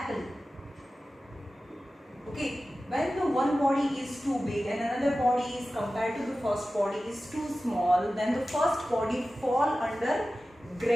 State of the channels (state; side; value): normal; both; correlation 0.95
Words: Okay, when the one body is too big and another body is compared to the first body is too small, then the first body fall under